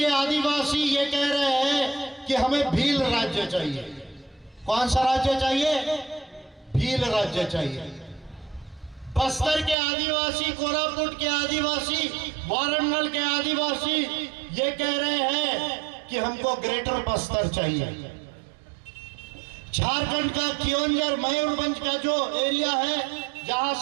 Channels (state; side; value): drops out; left; at 9.8 s